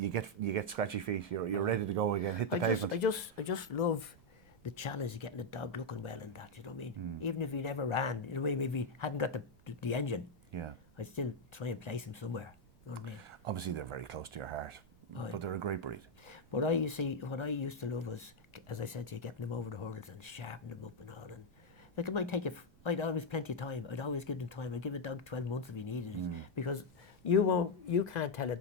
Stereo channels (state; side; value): noise; right; rumble, 26 dB below the sound